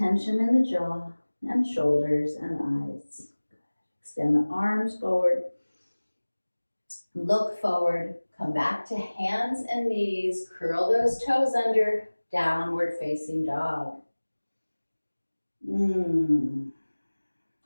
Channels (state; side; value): inverted; both; correlation -1.00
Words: in the jaw and shoulders and eyes. Extend the arms forward. Look forward. Come back to hands and knees. Curl those toes under. Downward facing dog.